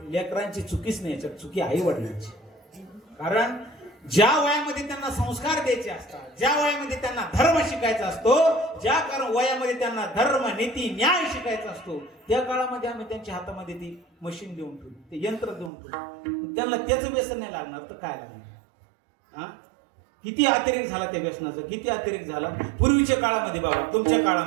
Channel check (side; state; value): left; drops out; at 15.7 s